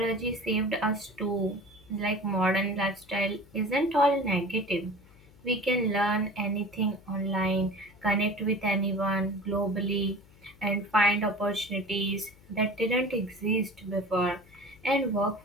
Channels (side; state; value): left; noise; hum, 25 dB below the sound